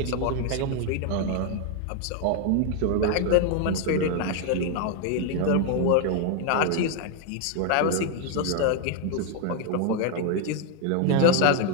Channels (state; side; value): different; both; correlation 0.01